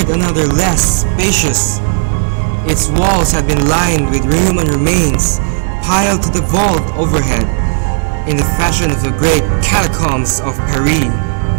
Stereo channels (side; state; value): left; silent; digital silence